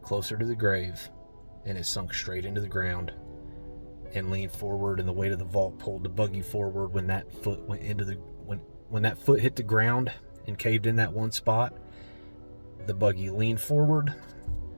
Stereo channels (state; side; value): inverted; both; correlation -1.00